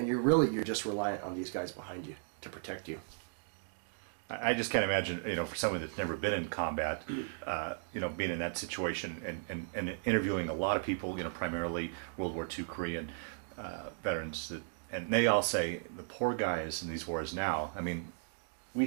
you're just reliant on these guys behind you to protect you. I just can't imagine, for someone that's never been in combat, being in that situation and interviewing a lot of people, primarily World War II Korean veterans, and they all say the poor guys in these wars now. I mean,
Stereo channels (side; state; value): left; silent; digital silence